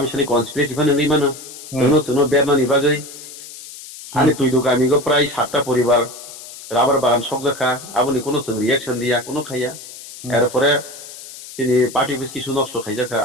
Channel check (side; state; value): left; noise; hiss, 15 dB below the sound